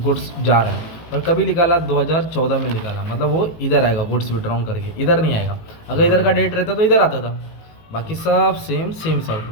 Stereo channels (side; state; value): right; late; 19 ms